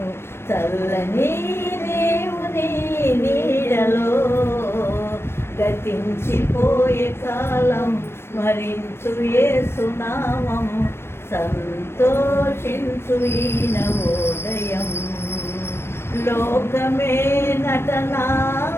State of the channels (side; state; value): right; late; 0.12 ms